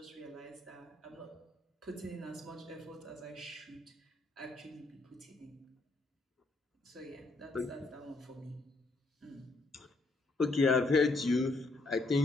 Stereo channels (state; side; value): quieter; right; 3.1 dB